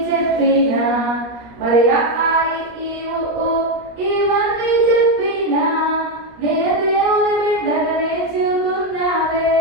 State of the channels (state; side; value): late; left; 17 ms